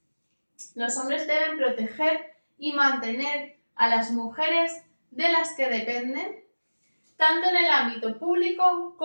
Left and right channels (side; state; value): both; inverted; correlation -1.00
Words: Los hombres deben proteger y mantener a las mujeres de las que dependen, tanto en el ámbito público